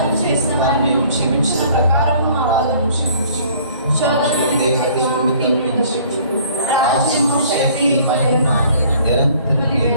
చేసిన వారిని మేము క్షమించిన ప్రకారం మా వాదన క్షమించు. శోధనకి రాజ్యము శక్తి మహిమ నిరంతరం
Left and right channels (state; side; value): inverted; both; correlation -0.54